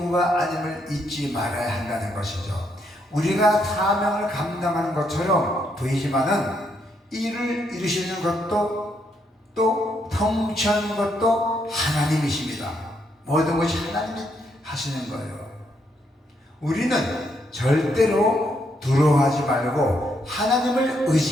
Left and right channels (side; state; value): both; normal; correlation 0.76